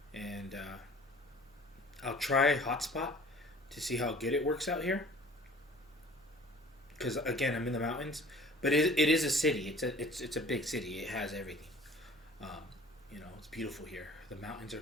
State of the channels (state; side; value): normal; both; correlation 0.48